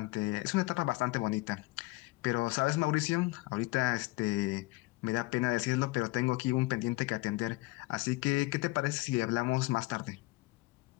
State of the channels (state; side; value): quieter; right; 22.2 dB